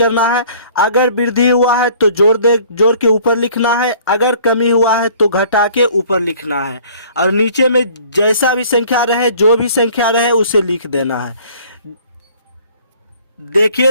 है। अगर वृद्धि हुआ है तो जोड़ के ऊपर लिखना है, अगर कमी हुआ है तो घटा के ऊपर लिखना है, और नीचे में जैसा भी संख्या रहे, जो भी संख्या रहे उसे लिख देना है।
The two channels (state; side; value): inverted; both; correlation -0.53